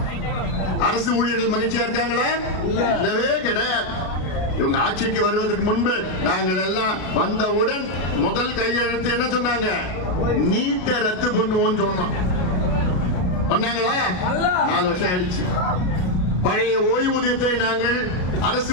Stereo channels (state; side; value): late; right; 33 ms